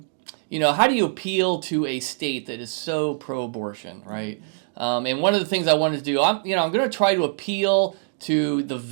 how do you appeal to a state that is so pro-abortion, right? And one of the things I wanted to do, I'm going to try to appeal to the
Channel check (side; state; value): left; silent; digital silence